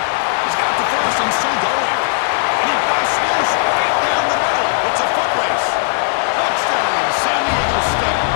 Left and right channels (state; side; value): silent; right; 61 dB below the other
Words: He's got the first and still going. And he busts loose right down the middle. It's a foot race. Touchdown, San Diego State.